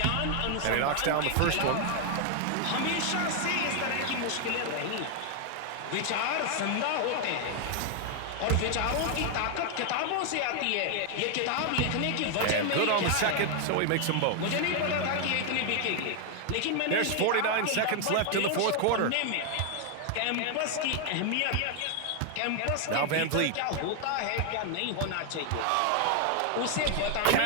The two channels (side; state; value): both; different; correlation 0.00